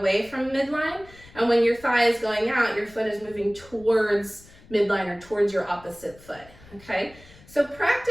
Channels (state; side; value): noise; left; rumble, 23 dB below the sound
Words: from midline, and when your thigh is going out, your foot is moving towards midline or towards your opposite foot, okay? So